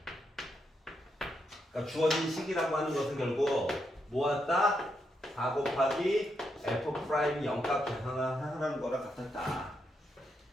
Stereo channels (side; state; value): both; normal; correlation 0.81